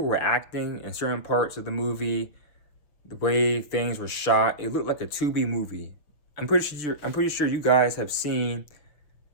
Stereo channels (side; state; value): right; late; 6.7 ms